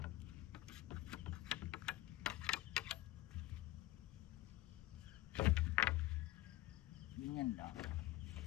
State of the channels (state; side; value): quieter; right; 16.7 dB